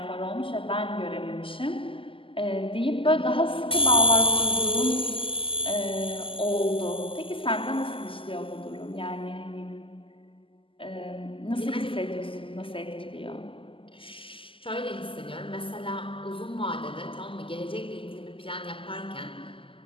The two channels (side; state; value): right; late; 0.25 ms